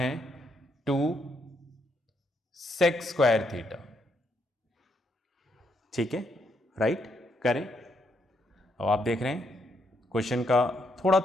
2 सेक स्क्वायर थीटा। ठीक है, राइट, करें। अब आप देख रहे हैं क्वेश्चन का थोड़ा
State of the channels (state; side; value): normal; both; correlation 0.76